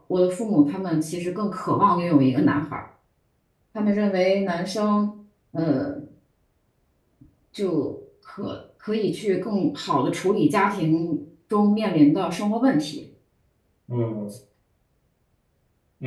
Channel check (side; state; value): both; identical; correlation 1.00